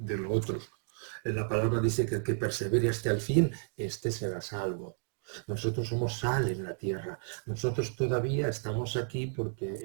otro. La palabra dice que el que persevere hasta el fin, este será salvo. Nosotros somos sal en la tierra. Nosotros todavía estamos aquí porque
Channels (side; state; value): left; silent; 56 dB below the other